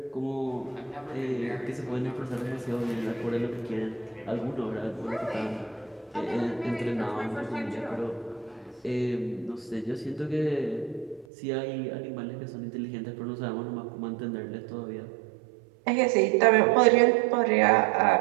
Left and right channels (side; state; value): left; drops out; at 11.2 s